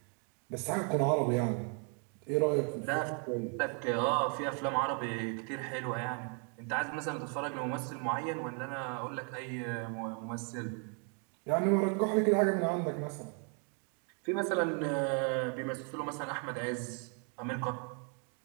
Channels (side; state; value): left; quieter; 39.4 dB